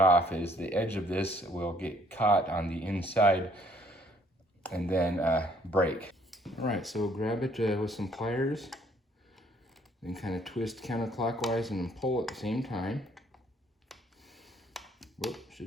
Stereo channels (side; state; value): both; normal; correlation 0.63